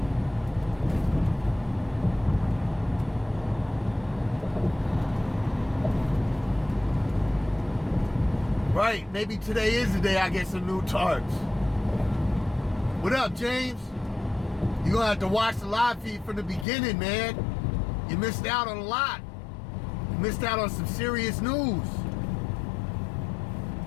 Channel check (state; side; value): drops out; right; at 16.7 s